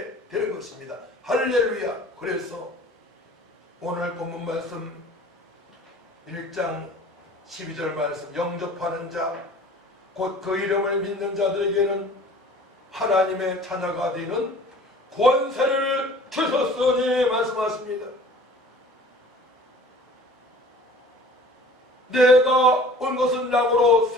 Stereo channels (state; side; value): normal; both; correlation 0.47